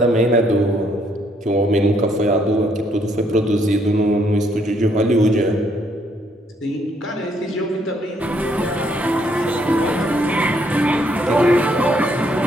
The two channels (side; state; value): both; normal; correlation 0.70